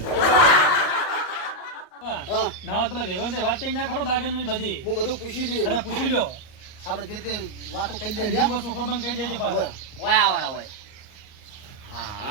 હા ના પેલા વેવન વાત કરી નાખો દાગન બધી હું બધું પૂછી લઈએ અને પૂછી લ્યો આપણે જે તે વાતો કરી દે બીજું વસ્તુ ખબર કહી દેજો પાછા ઓય આવડા હોય હા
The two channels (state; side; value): late; right; 38 ms